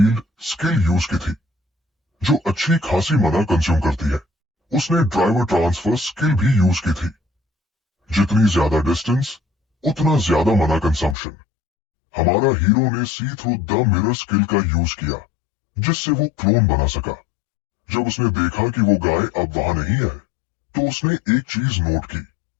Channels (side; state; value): right; drops out; at 11.2 s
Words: स्किल यूज की थी, जो अच्छी खासी मना कंज्यूम करती है। उसने ड्राइवर ट्रांसफर स्किल भी यूज की थी। जितनी ज्यादा डिस्टेंस उतना ज्यादा मना कंजम्पशन। हमारा हीरो ने सी थ्रू द मिरर स्किल का यूज किया जिससे वो क्लोन बना सका। जब उसने देखा कि वो गाय अब वहां नहीं है तो उसने एक चीज नोट की।